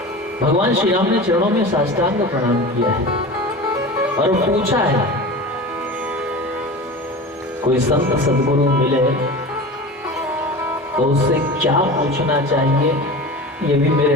भगवान श्री राम ने चरणों में साष्टांग प्रणाम किया है और पूछा है, कोई संत सद्गुरु मिले तो उससे क्या पूछना चाहिए, ये भी मेरे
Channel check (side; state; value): both; normal; correlation 0.32